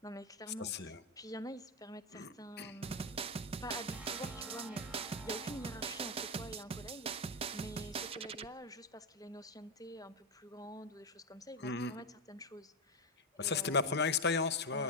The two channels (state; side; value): normal; both; correlation 0.08